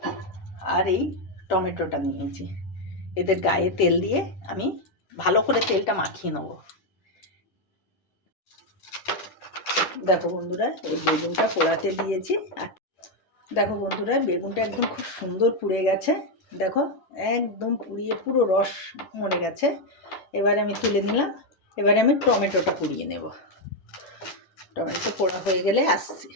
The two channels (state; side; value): late; right; 10 ms